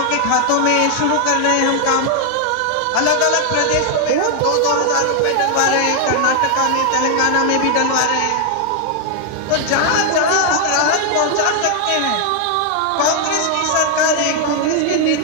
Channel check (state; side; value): different; both; correlation 0.00